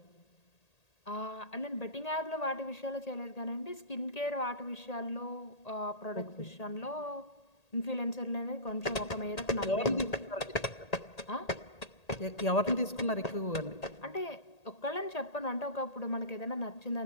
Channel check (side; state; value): right; late; 1.8 ms